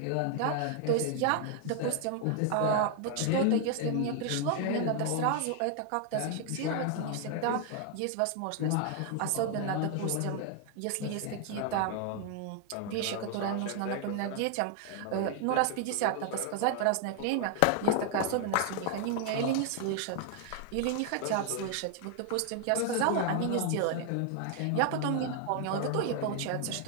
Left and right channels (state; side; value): different; both; correlation 0.00